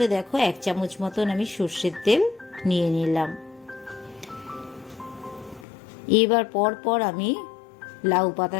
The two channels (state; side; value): drops out; right; at 5.7 s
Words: দেখো 1 চামচ মতন আমি সর্ষের তেল নিয়ে নিলাম। এবার পর আমি লাউ